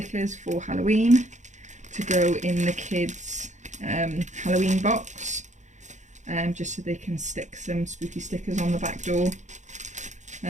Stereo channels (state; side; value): late; left; 0.35 ms